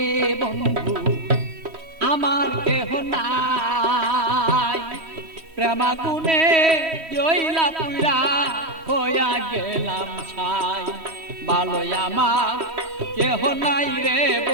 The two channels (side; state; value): left; late; 3.1 ms